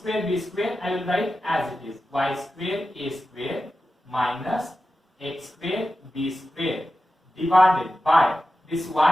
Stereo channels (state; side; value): normal; both; correlation 0.92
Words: b square, I will write as it is, y square a square minus x square b square divided by this